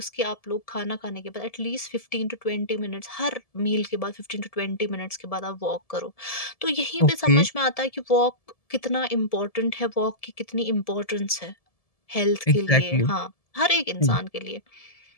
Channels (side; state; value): right; late; 1.7 ms